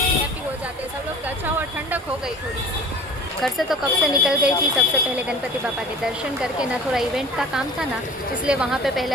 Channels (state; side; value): normal; both; correlation 0.42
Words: हो जाते हैं सब लोग। अच्छा हुआ ठंडक हो गई थोड़ी सी। घर से तो कब से निकल गई थी। सबसे पहले गणपति बापा के दर्शन करके ना, थोड़ा इवेंट का काम था ना, इसलिए वहाँ पे